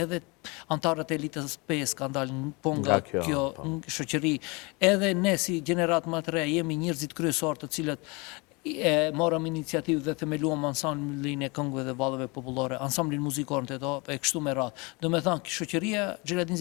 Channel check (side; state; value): right; quieter; 28.0 dB